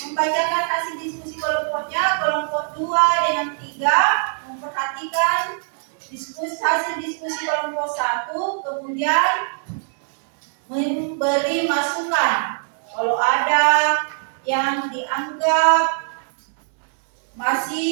membacakan hasil diskusi kelompoknya, kelompok 2 dengan 3 memperhatikan hasil diskusi kelompok 1, kemudian memberi masukan. Kalau ada yang dianggap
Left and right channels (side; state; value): left; silent; digital silence